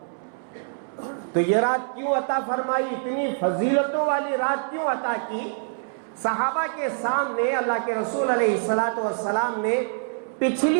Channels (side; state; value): left; silent; 62 dB below the other